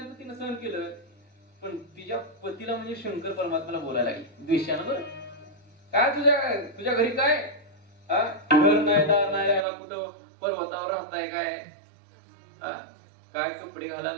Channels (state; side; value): drops out; left; at 9.7 s